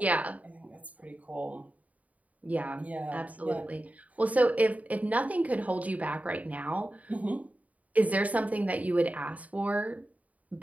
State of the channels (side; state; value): left; late; 0.071 ms